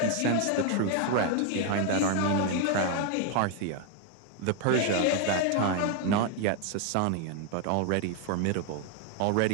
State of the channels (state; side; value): different; both; correlation 0.01